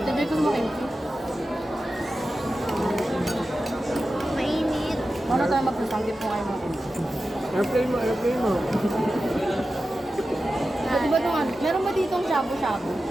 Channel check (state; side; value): normal; both; correlation 0.93